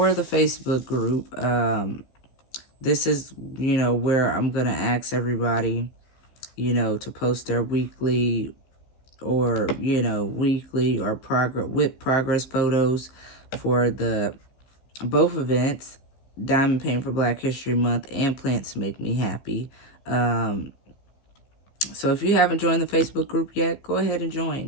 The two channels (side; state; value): right; late; 15 ms